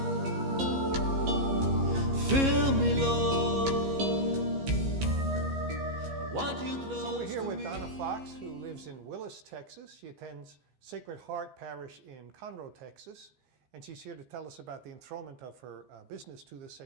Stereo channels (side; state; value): left; late; 15 ms